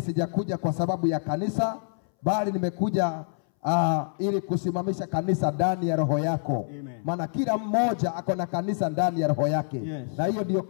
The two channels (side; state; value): right; silent; 60 dB below the other